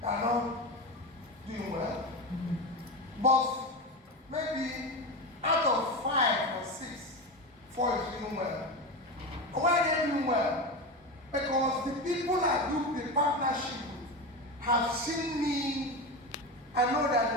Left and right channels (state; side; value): normal; both; correlation 0.20